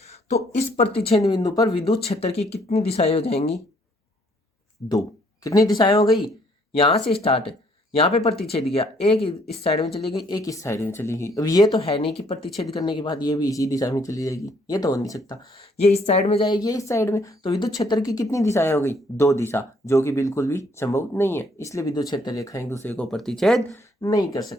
तो इस प्रतिच्छेद बिंदु पर विद्युत क्षेत्र की कितनी दिशाएं हो जाएंगी? दो। कितनी दिशाएं हो गई? यहां से स्टार्ट है, यहां पे प्रतिच्छेद किया, एक इस साइड में चली गई, एक इस साइड में चली गई। अब ये तो है नहीं कि प्रतिच्छेद करने के बाद ये भी इसी दिशा में चली जाएगी, ये तो हो नहीं सकता। ये इस साइड में जाएगी, ये इस साइड में, तो विद्युत क्षेत्र की कितनी दिशाएं हो गई? दो दिशा, जो कि बिल्कुल भी संभव नहीं है। इसलिए विद्युत क्षेत्र रेखाएं एक दूसरे को प्रतिच्छेद नहीं कर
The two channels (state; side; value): normal; both; correlation 0.65